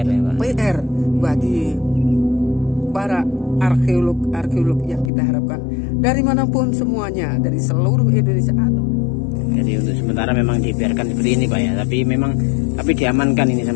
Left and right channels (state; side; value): drops out; right; at 5.1 s